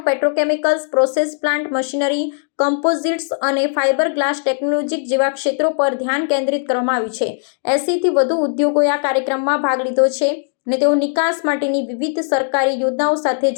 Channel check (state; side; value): silent; right; digital silence